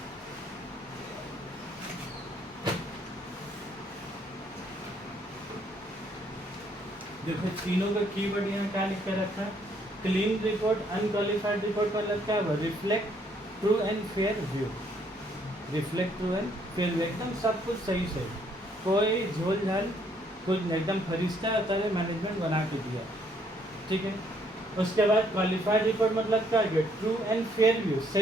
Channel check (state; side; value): normal; both; correlation 0.68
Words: देखो तीनों का कीवर्ड यहाँ क्या लिख कर रखा है? क्लीन रिपोर्ट, अनक्वालिफाइड रिपोर्ट मतलब क्या हुआ? Reflect true and fair view. Reflect true and fair view, एकदम सब कुछ सही सही, कोई झोल झाल कुछ एकदम फरिश्ता तरह मैनेजमेंट बना के दिया, ठीक है। उसके बाद क्वालिफाइड रिपोर्ट मतलब क्या है? ट्रू एंड फेयर व्यू,